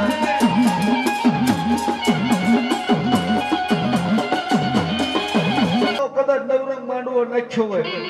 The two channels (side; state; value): both; identical; correlation 1.00